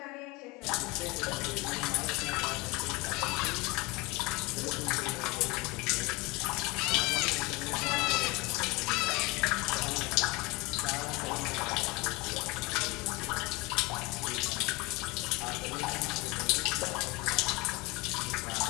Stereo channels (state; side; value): quieter; right; 24.5 dB